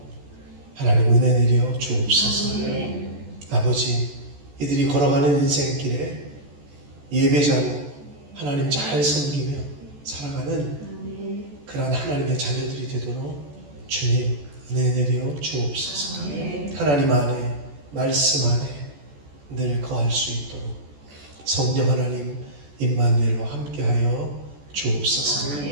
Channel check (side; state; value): left; late; 14 ms